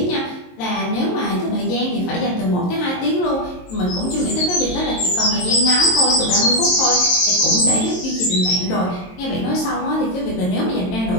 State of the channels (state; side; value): late; right; 22 ms